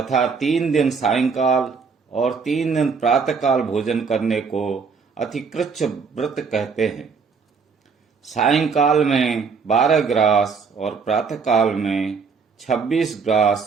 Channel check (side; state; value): left; quieter; 5.4 dB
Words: 3 दिन सायंकाल और 3 दिन प्रातःकाल भोजन करने को अतिकृच्छ व्रत कहते हैं। सायंकाल में 12 ग्रास और प्रातःकाल में 26 ग्रास